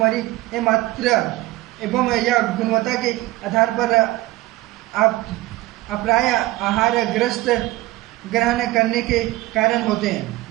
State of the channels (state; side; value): quieter; left; 18.6 dB